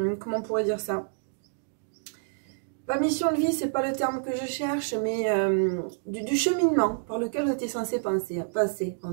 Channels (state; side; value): silent; left; digital silence